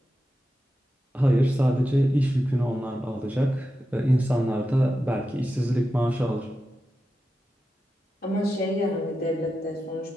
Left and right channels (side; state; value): both; normal; correlation 0.90